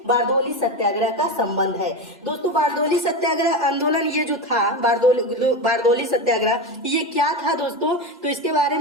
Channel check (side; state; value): both; normal; correlation 0.19